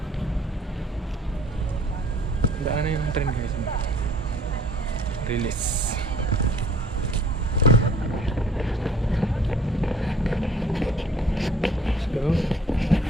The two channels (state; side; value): normal; both; correlation 0.54